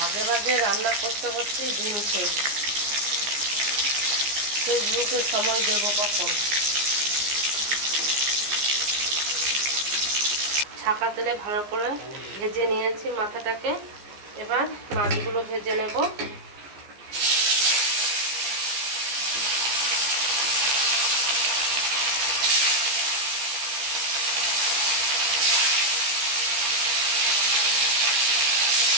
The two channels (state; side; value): late; left; 14 ms